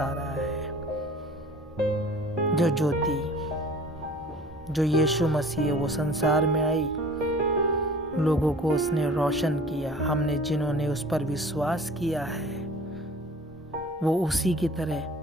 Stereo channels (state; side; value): normal; both; correlation 0.46